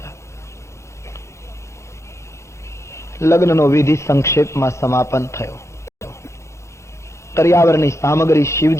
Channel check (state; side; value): late; right; 0.14 ms